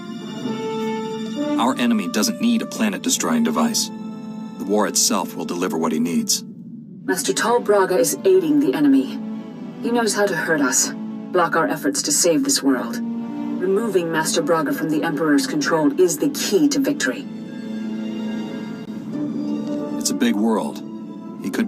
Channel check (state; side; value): identical; both; correlation 1.00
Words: Our enemy doesn't need a planet-destroying device. The war itself will deliver what he needs. Master Tal Braga is aiding the enemy. He knows how to hurt us, block our efforts to save this world. Removing Master Braga from the Emperor's control is the key to victory. It's a big world. He could